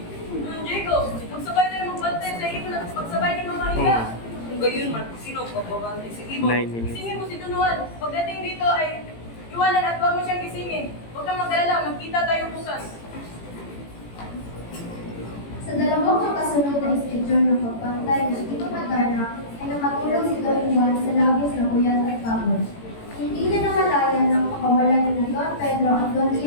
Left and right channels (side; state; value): right; late; 18 ms